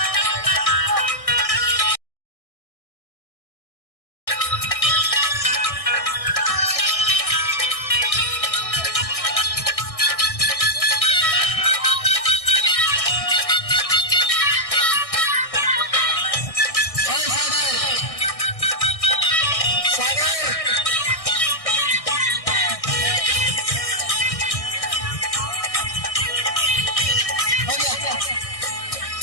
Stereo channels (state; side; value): late; right; 1.6 ms